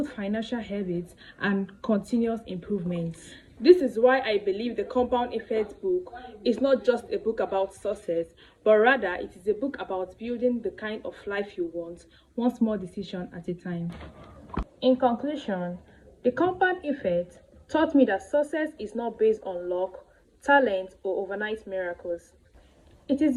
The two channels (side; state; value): both; identical; correlation 1.00